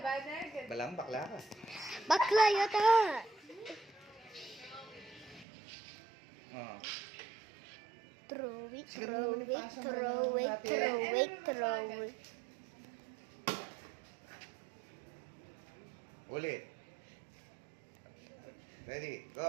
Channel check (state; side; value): drops out; left; at 5.5 s